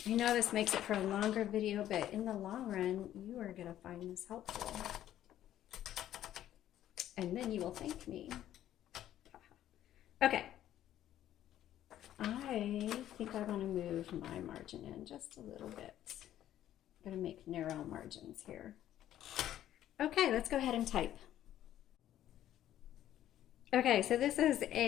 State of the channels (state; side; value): quieter; right; 12.1 dB